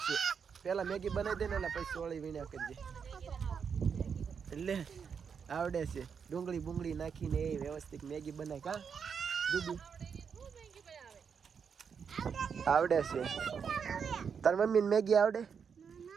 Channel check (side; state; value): left; quieter; 6.6 dB